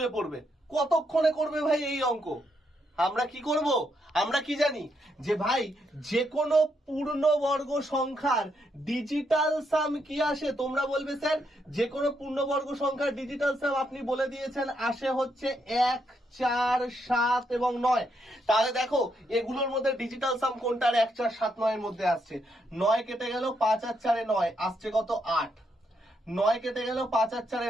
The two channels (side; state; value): both; normal; correlation 0.78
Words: পড়বে। কতক্ষণে করবে ভাই এই অঙ্ক? আমরা কি করব? আমরা কি জানি যে ভাই যে কোনো পূর্ণবর্গ সংখ্যার ডিজিটাল সাম কি আসে? তোমরা বলবে স্যার যে কোনো পূর্ণবর্গ সংখ্যার ডিজিটাল সাম আপনি বলে দিয়েছেন আসে হচ্ছে 1, 4, 7 এবং 9। তাহলে দেখো এগুলোর মধ্যে ডিজিটাল সাম কোনটার 1, 4, 7, 9 এর মধ্যে আসছে? 9 কেটে গেল, 5 আর 4 এ 9, আসছে কত? 8। 9 কেটে গেল, 5 আর 4